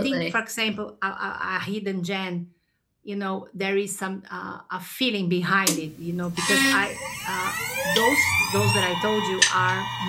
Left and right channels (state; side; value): identical; both; correlation 1.00